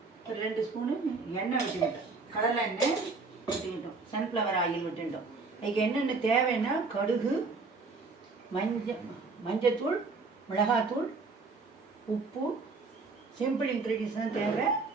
ஒரு 2 ஸ்பூனு எண்ணெய் விட்டுக்கிட்டோம், கடலை எண்ணெய் விட்டுக்கிட்டோம், சன்ஃப்ளவர் ஆயில் விட்டுக்கிட்டோம். அதுக்கு என்னென்ன தேவைன்னா கடுகு, மஞ்சத்தூள், மிளகாத்தூள், உப்பு, சிம்பிள் இன்க்ரீடியன்ஸ் தான் தேவை,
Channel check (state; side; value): quieter; left; 4.1 dB